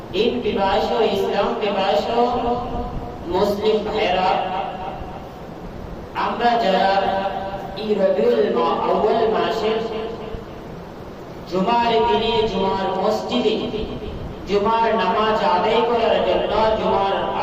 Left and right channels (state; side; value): identical; both; correlation 1.00